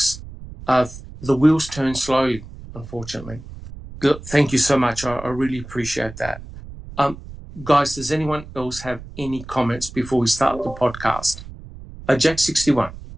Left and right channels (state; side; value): noise; right; rumble, 14 dB below the sound